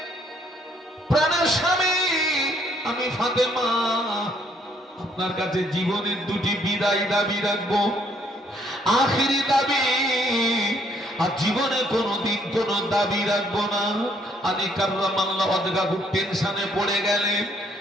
প্রাণের স্বামী, আমি ফাতেমা আপনার কাছে জীবনের দুটি বিদায় দাবি রাখবো, আখিরি দাবি, আর জীবনে কোনোদিন কোনো দাবি রাখবো না। আলী কাররামাল্লাহু ওয়াজহাহু টেনশনে পড়ে গেলেন।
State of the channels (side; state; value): both; normal; correlation 0.67